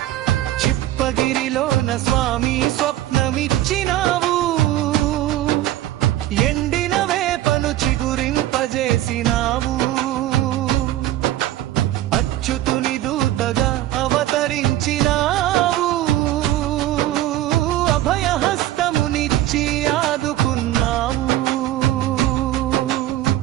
చిప్పగిరిలోన స్వామి స్వప్నమిచ్చినావు, ఎండిన వేపను చిగురింపజేసినావు. అచ్యుతుని దూతగా అవతరించినావు, అభయహస్తమునిచ్చి ఆదుకున్నావు.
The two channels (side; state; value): left; quieter; 14.2 dB